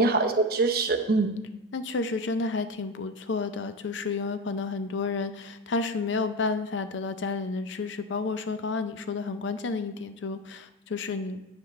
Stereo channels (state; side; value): normal; both; correlation 0.19